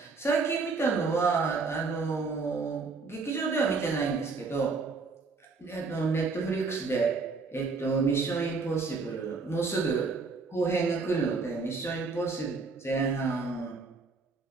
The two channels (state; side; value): quieter; left; 4.3 dB